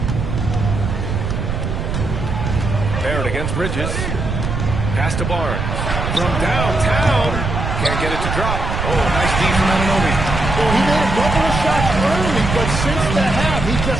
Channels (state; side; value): noise; right; rumble, 3 dB below the sound